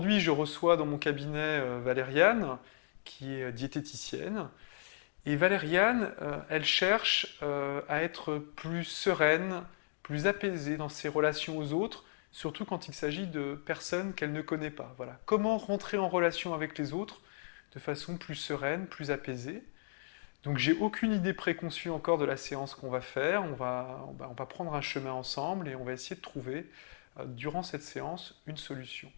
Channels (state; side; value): silent; right; digital silence